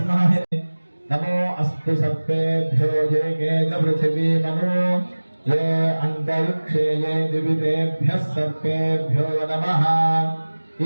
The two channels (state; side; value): inverted; both; correlation -1.00